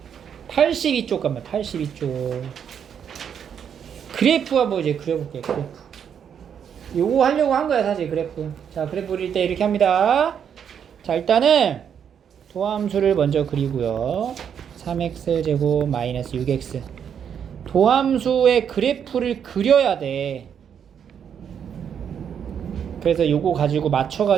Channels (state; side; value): quieter; left; 8.1 dB